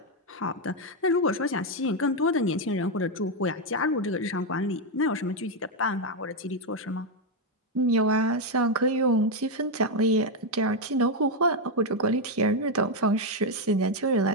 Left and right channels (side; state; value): both; normal; correlation 0.03